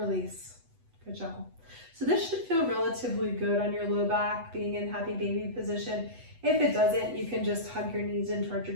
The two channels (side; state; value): left; late; 8.0 ms